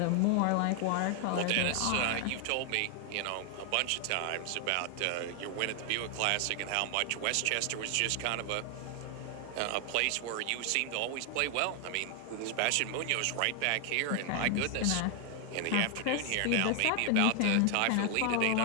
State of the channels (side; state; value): both; different; correlation 0.00